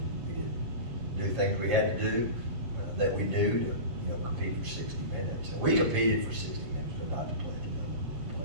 We didn't do things we had to do that we knew to compete for 60 minutes. And we competed for 60 minutes, but not to play at the level we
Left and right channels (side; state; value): left; late; 7.4 ms